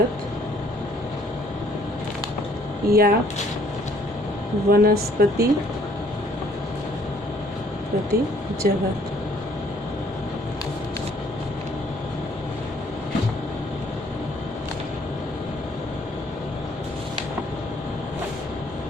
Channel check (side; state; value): both; normal; correlation 0.62